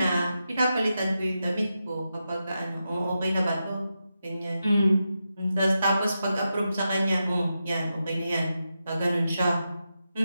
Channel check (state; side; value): inverted; both; correlation -0.88